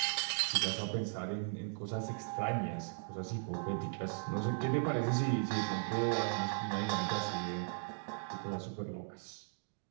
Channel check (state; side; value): silent; left; digital silence